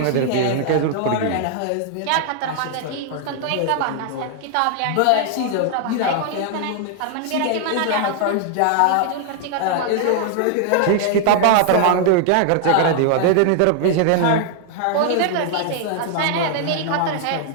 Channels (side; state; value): both; different; correlation 0.00